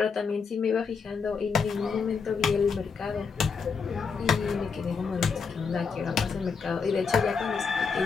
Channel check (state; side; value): quieter; right; 5.5 dB